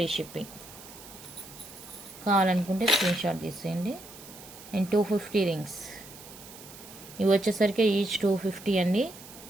షిప్పింగ్. కావాలనుకుంటే స్క్రీన్ షాట్ తీసేయండి. And 250 rings. ఇవి వచ్చేసరికి ఈచ్ 250 అండి.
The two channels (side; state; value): right; noise; hiss, 17 dB below the sound